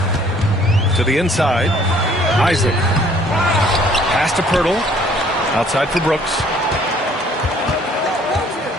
To the inside. Isaac. Pass to Pirtle. Outside for Brooks.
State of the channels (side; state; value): both; normal; correlation 0.58